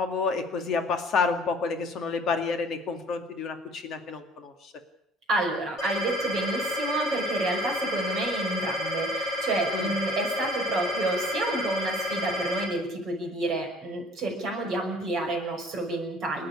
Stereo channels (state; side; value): normal; both; correlation 0.52